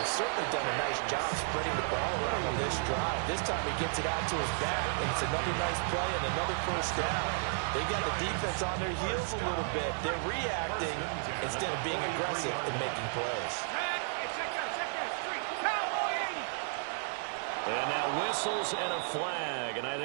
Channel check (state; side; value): silent; left; 56 dB below the other